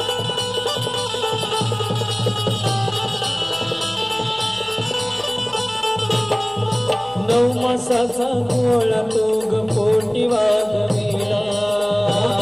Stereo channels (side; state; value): left; noise; hum, 26 dB below the sound